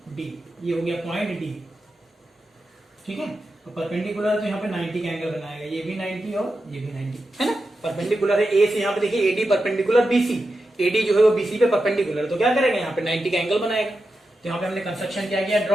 डी, ये हो गया पॉइंट डी। ठीक है, तो परपेंडिकुलर तो यहाँ पे 90 का एंगल बनाएगा, ये भी 90 और ये भी 90, है ना। परपेंडिकुलर है ए से, यहाँ पे देखिए एडी परपेंडिकुलर बीसी, एडी जो है वो बीसी पे परपेंडिकुलर, तो क्या करेगा यहाँ पे 90 का एंगल बनाएगा। तो यहाँ पे हमने कंस्ट्रक्शन क्या किया,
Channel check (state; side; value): normal; both; correlation 0.89